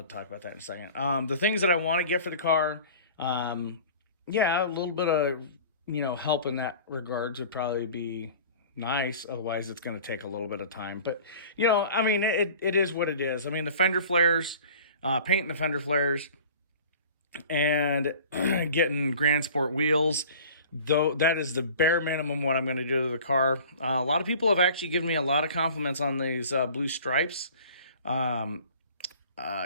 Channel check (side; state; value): both; inverted; correlation -0.44